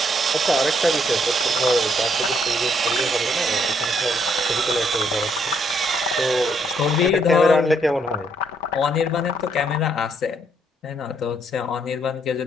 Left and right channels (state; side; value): normal; both; correlation 0.71